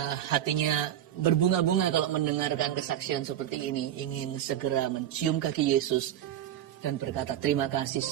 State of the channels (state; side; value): quieter; left; 11.2 dB